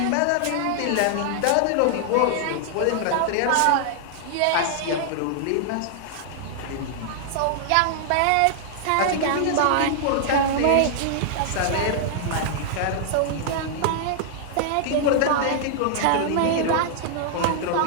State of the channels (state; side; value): different; both; correlation -0.01